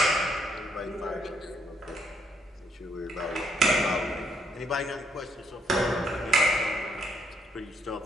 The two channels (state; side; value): normal; both; correlation 0.72